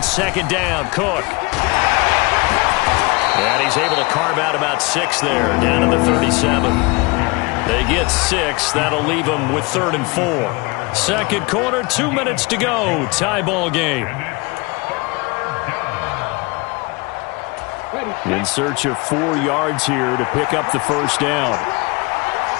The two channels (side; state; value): right; quieter; 26.7 dB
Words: down, Cook. And he's able to carve out about 6 there, down to the 37. They get 6. That'll leave them with 3rd and 4. 2nd quarter, 2 minutes to go. Tie ball game. In search of 4 yards here to pick up the 1st down.